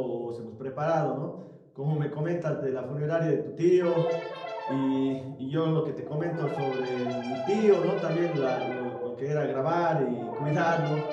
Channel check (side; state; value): both; identical; correlation 1.00